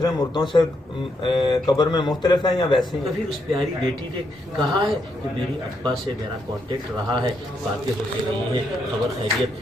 मुर्दों से कब्र में मुख्तलिफ हैं या वैसे ही? कभी उस प्यारी बेटी ने कहा है कि मेरी अब्बा से मेरा कांटेक्ट रहा है, बातें होती रही हैं, खबर खैरियत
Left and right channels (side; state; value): both; normal; correlation 0.78